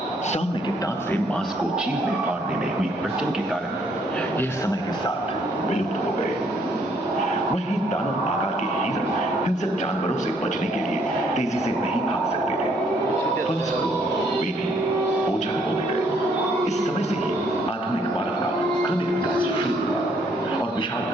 सामने के दांत से मांस को चीरने फाड़ने में हुई अड़चन के कारण यह समय के साथ विलुप्त हो गए। वहीं दानव आकार के हिरण हिंसक जानवरों से बचने के लिए तेजी से नहीं भाग सकते थे, फलस्वरूप वे भी ओझल होने गए। इस समय से ही आधुनिक मानव का क्रमिक विकास शुरू हुआ और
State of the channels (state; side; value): normal; both; correlation 0.67